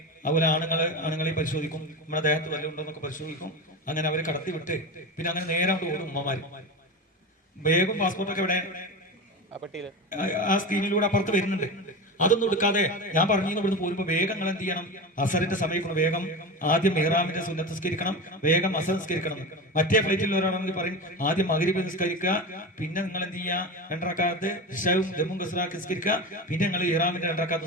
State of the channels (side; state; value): both; normal; correlation 0.25